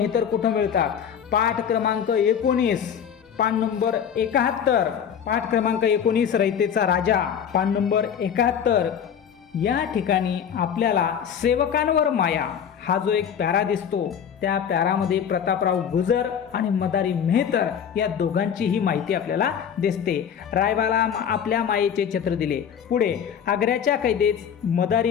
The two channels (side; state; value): right; quieter; 8.2 dB